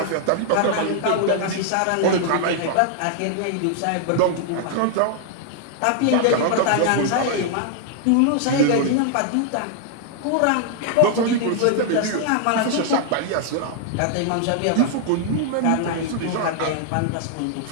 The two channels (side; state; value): both; different; correlation -0.01